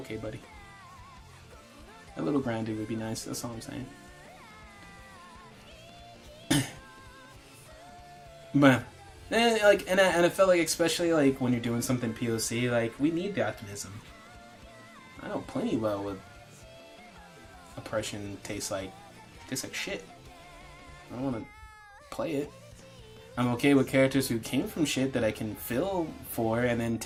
buddy. A little grounded would be nice, that's all I'm saying. But, and I felt like, especially like when you're doing something POC, like, we need the optimism. I know plenty well what oppression tastes like shit. I don't want to play it. I'm okay with characters who came from shit that I can feel for, and then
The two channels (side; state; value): both; identical; correlation 1.00